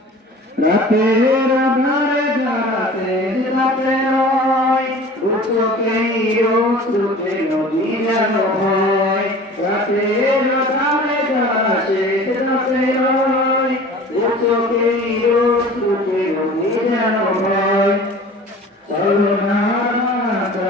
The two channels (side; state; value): both; normal; correlation 0.42